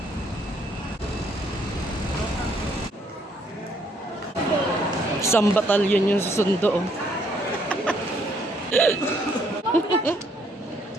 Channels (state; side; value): normal; both; correlation 0.68